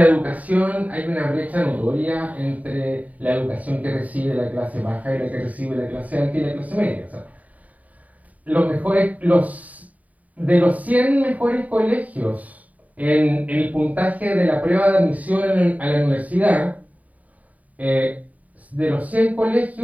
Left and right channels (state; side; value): late; left; 0.072 ms